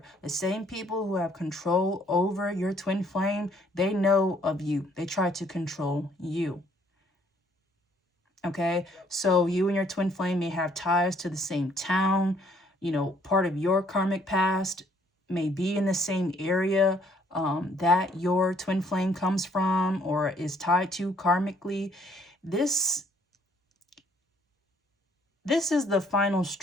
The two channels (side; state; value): both; normal; correlation 0.64